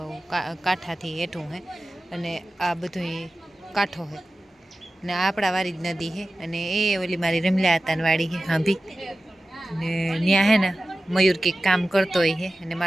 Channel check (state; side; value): normal; both; correlation 0.95